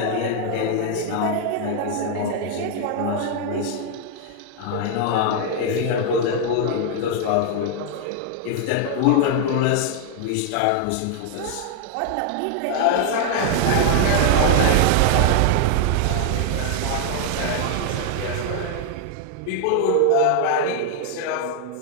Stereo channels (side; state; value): both; different; correlation 0.00